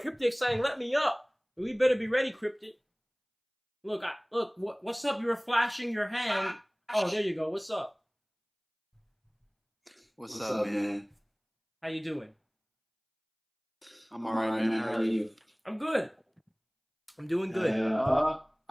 Cryptic saying, "Let me up." We better be ready, Cryptic. Look, what's up? You were flashing your hand. Oh, there you go. What's up? What's up, man? How you doing? I'm alright, man. How are you? I'm good. I'm doing good.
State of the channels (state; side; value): identical; both; correlation 1.00